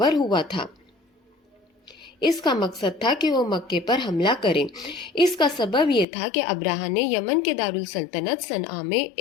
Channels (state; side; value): drops out; right; at 6.1 s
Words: ہوا تھا۔ اس کا مقصد تھا کہ وہ مکے پر حملہ کریں۔ اس کا سبب یہ تھا کہ ابرہہ نے یمن کے دارالسلطنت صنعا میں